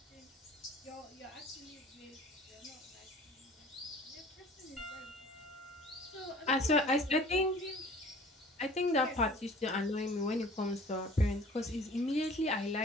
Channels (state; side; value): normal; both; correlation 0.48